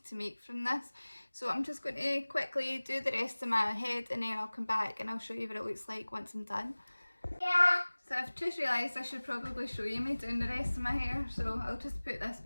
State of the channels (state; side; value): inverted; both; correlation -1.00